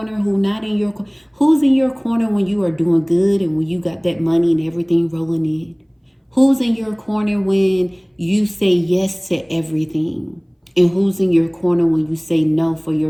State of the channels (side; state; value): both; identical; correlation 1.00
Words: who not in your corner. Who's in your corner when you are doing good and when you got that money and everything rolling in. Who's in your corner when you say yes to everything. And who's in your corner when you say no for